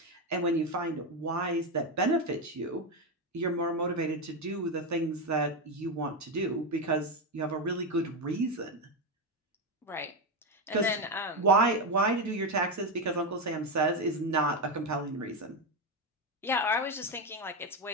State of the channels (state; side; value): normal; both; correlation 0.10